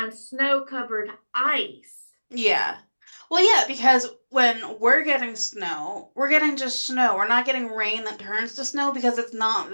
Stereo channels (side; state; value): both; inverted; correlation -1.00